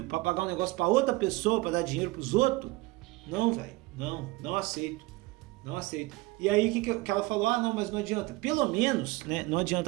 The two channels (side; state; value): left; quieter; 21.9 dB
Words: pra pagar um negócio pra outra pessoa, pra dar dinheiro pros outros, não, velho, não aceito. Não aceito. E aí que ela falou, não, mas não adianta. Pelo menos, né, não